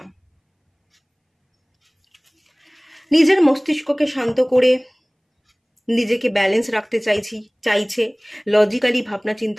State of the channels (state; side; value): identical; both; correlation 1.00